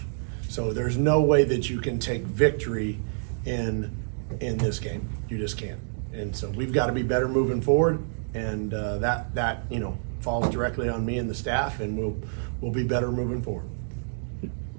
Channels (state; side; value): silent; left; digital silence